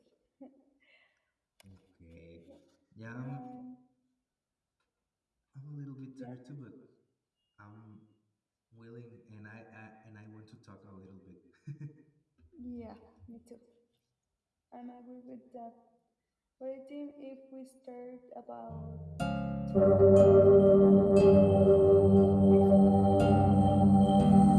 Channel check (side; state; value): both; identical; correlation 1.00